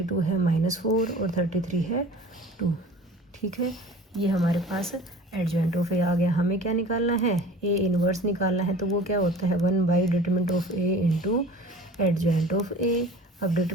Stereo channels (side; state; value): both; normal; correlation 0.43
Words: है माइनस 4 और 33 है 2। ठीक है, ये हमारे पास एडजॉइंट ऑफ ए आ गया। हमें क्या निकालना है, ए इनवर्स निकालना है, तो वो क्या होता है 1 by determinant of A into adjoint of A. अब